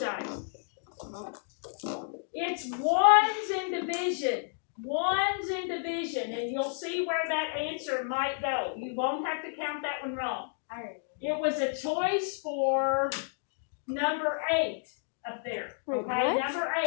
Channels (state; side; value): silent; right; digital silence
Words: It's ones in division. Ones in division, and you'll see where that answer might go. You won't have to count that one wrong. It was a choice for number 8 up there. Okay, number